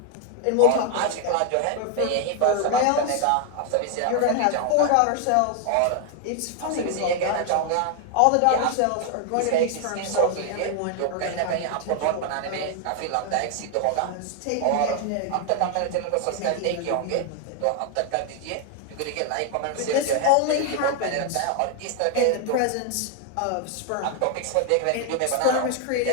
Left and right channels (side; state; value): both; different; correlation 0.00